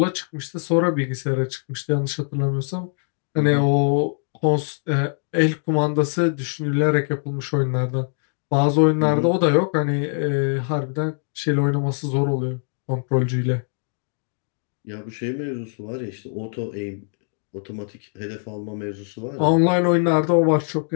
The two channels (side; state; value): right; silent; 59 dB below the other